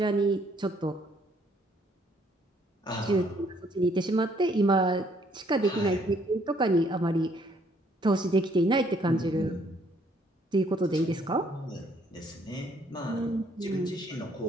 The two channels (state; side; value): normal; both; correlation 0.66